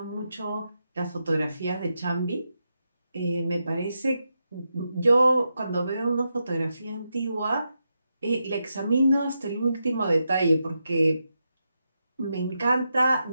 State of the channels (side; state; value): both; inverted; correlation -0.86